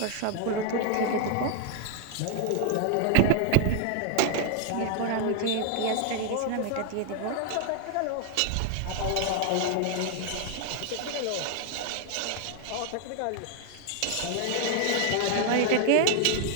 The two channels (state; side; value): different; both; correlation 0.00